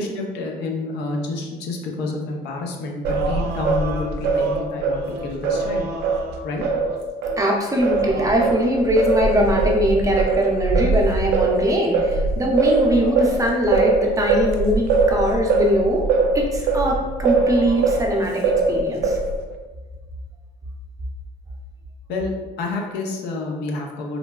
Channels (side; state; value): both; normal; correlation 0.52